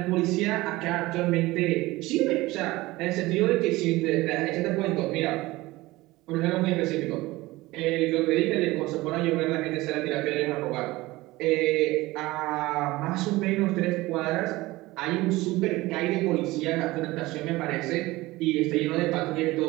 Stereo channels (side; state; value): left; quieter; 19.6 dB